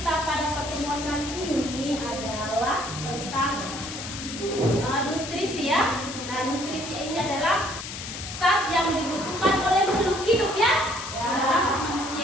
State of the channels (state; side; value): noise; left; hiss, 8 dB below the sound